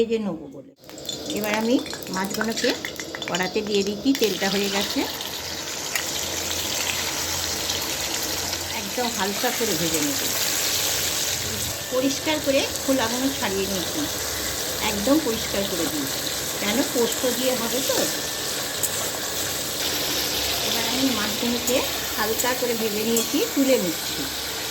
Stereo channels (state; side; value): identical; both; correlation 1.00